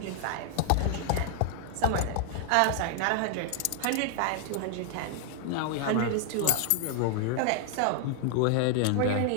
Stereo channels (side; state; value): both; different; correlation 0.00